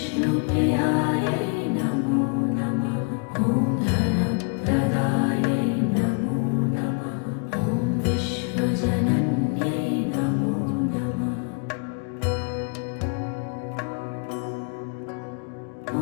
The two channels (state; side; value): quieter; right; 36.6 dB